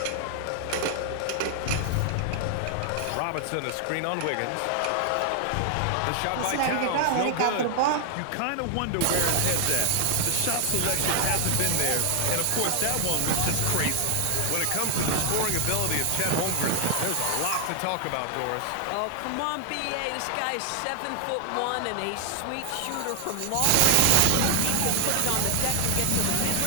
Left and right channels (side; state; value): both; different; correlation 0.00